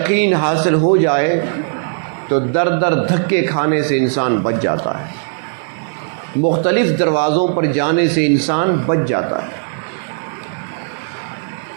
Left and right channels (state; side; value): silent; left; digital silence